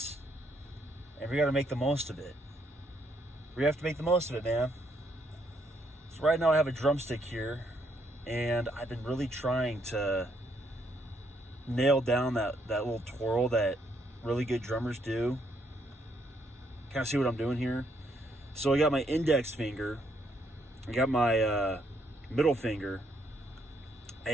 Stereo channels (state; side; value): normal; both; correlation 0.73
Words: and we got to make the most of it. We have to make the most of it, man. So right now I have a drumstick here, and I've been really trying to nail down that little twirl that really good drummers do. Kind of see what I'm doing here. So I got my index finger, I got my middle finger,